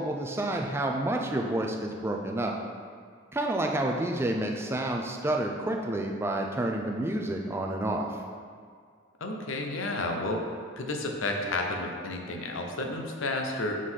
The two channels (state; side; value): normal; both; correlation 0.50